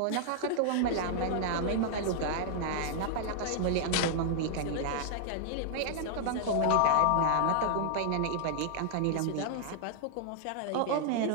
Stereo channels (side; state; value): both; different; correlation -0.01